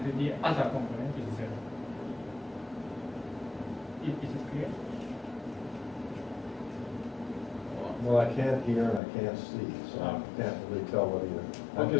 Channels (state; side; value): drops out; right; at 9.0 s